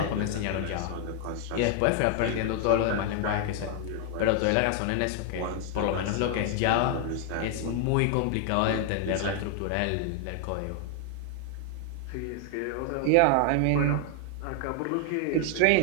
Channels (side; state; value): both; different; correlation 0.00